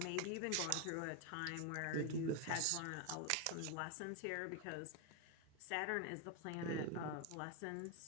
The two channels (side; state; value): both; different; correlation 0.01